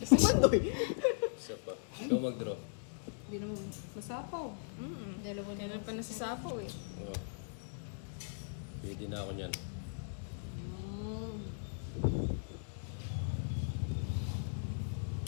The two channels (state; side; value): silent; right; digital silence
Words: Bandoy. Isa pa. Ikaw mag-draw. Hindi naman masapaw. Dalawa na Meron lang pa na si sa sapo eh. Oh. Pwede na ako niyan.